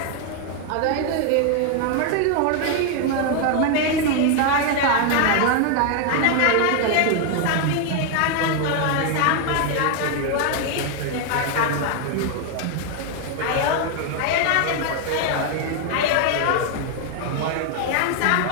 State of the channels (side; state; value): both; different; correlation 0.01